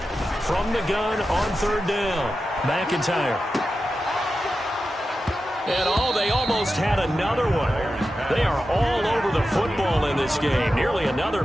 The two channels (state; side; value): normal; both; correlation 0.91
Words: from the gun on 3rd down. McIntyre. And they almost had another one. They are all over the football in this game. Nearly another